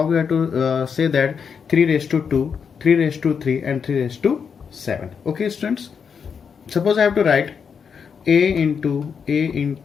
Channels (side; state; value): right; quieter; 6.5 dB